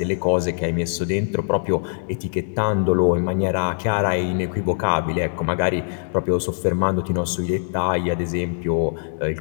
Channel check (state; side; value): silent; right; digital silence